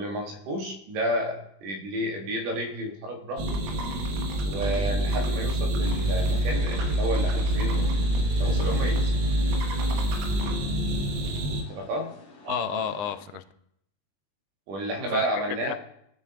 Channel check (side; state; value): left; late; 21 ms